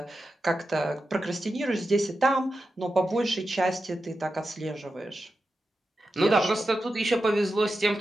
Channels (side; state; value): both; normal; correlation 0.90